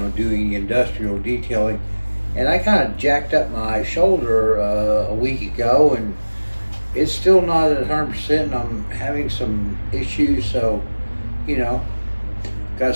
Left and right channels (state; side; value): inverted; both; correlation -1.00